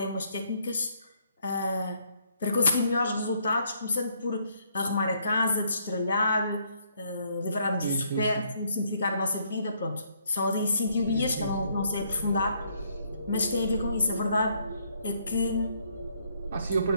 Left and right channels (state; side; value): inverted; both; correlation -0.70